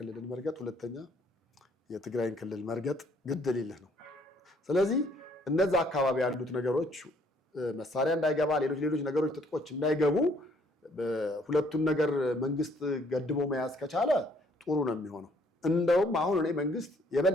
መርገጥ፣ ሁለተኛ የትግራይን ክልል መርገጥ ግድ ሊልህ ነው። ስለዚህ እነዛ አካባቢ ያሉት ነገሮች መሳሪያ እንዳይገባ፣ ሌሎች ነገሮች ትጥቆች እንዳይገቡ ሁለቱን ነገር መንግስት ገድቦ መያዝ ከቻለ ጥሩ ነው የሚሆነው። እንደውም አሁን እኔ መንግስት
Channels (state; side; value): normal; both; correlation 0.64